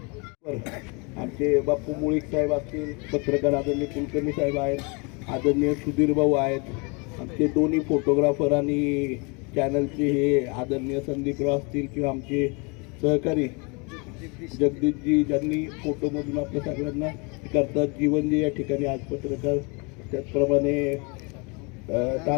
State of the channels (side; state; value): right; quieter; 31.0 dB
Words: आमचे बापू मुळीक साहेब असतील, पत्रकार आदरणीय कुलकर्णी साहेब आहेत, आदरणीय सुधीर भाऊ आहेत, आमचे दोन्ही फोटोग्राफर आणि चॅनलचे हे आदरणीय संदीपराव असतील किंवा आमचे सहकारी जगदीशजी ज्यांनी फोटोमधून आपल्या सगळ्यांना करतात, जीवनजी या ठिकाणी आज पत्रकार, त्याचप्रमाणे